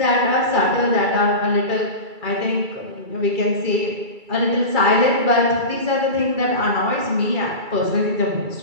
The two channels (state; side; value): late; left; 2.3 ms